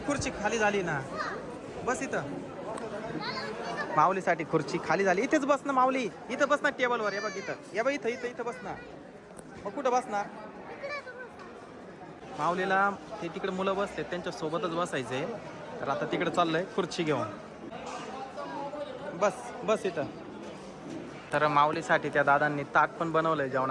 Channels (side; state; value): both; identical; correlation 1.00